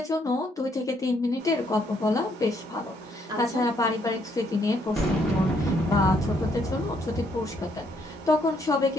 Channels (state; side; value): normal; both; correlation 0.71